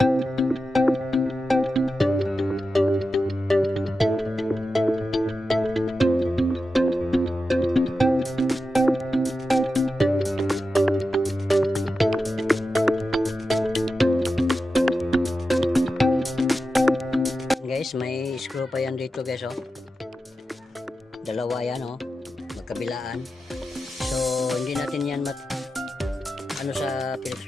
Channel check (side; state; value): both; normal; correlation 0.91